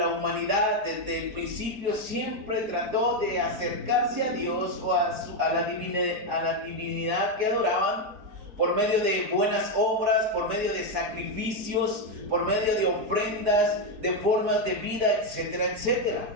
humanidad desde el principio siempre trató de acercarse a Dios o a la divinidad que adoraban por medio de buenas obras, por medio de sacrificios, por medio de ofrendas, de formas de vida, etcétera,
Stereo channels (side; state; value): left; late; 4.7 ms